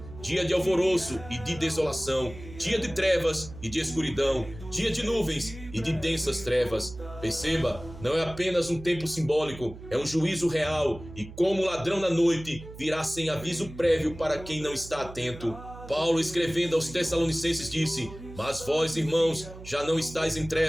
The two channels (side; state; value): right; noise; hum, 15 dB below the sound